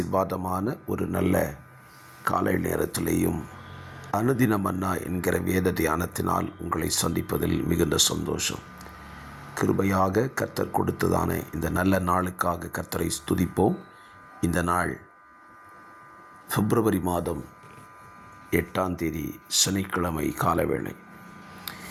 ஒரு நல்ல காலை நேரத்திலேயும் அனுதின மன்னா என்கிற வேத தியானத்தினால் உங்களை சந்திப்பதில் மிகுந்த சந்தோஷம். கிருபையாக கர்த்தர் கொடுத்ததான இந்த நல்ல நாளுக்காக கர்த்தரை ஸ்துதிப்போம். இந்த நாள் பிப்ரவரி மாதம் 8ஆம் தேதி சனிக்கிழமை காலவேளை.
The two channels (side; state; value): both; identical; correlation 1.00